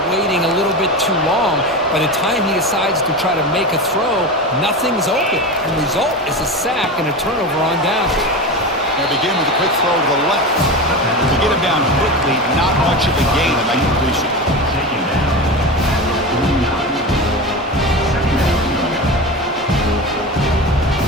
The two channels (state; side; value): normal; both; correlation 0.24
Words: waiting a little bit too long. By the time he decides to try to make a throw, nothing's open. And the result is a sack and a turnover on down. They begin with a quick throw to the left. To get him down quickly, not much of a gain in that completion.